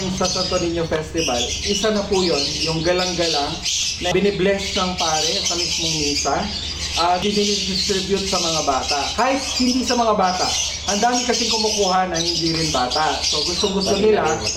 sa Santo Niño Festival, isa na po yun, yung galang-galang na binibless ng pare sa mismong misa at dinidistribute sa mga bata. Kahit hindi sa mga bata, ang dami kasing kumukuha na hindi rin bata. So gusto-gusto nila,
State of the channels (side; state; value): both; identical; correlation 1.00